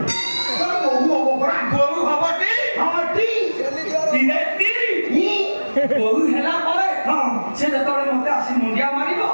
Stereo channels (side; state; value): both; inverted; correlation -1.00